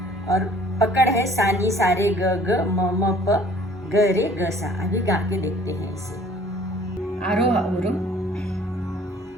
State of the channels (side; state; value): both; normal; correlation 0.53